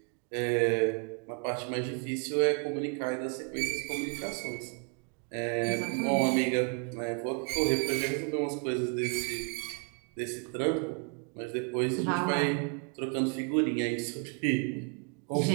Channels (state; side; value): quieter; left; 37.8 dB